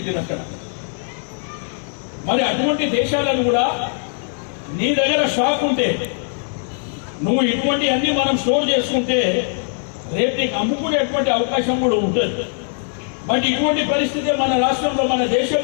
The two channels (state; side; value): silent; right; 60 dB below the other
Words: అక్కడ. మరి అటువంటి దేశాలను కూడా నీ దగ్గర స్టాక్ ఉంటే నువ్వు ఇటువంటి అన్ని మనం స్టోర్ చేసుకుంటే రేపు నీకు అమ్ముకునేటువంటి అవకాశం కూడా ఉంటుంది. బట్ ఇటువంటి పరిస్థితి మన రాష్ట్రంలో మన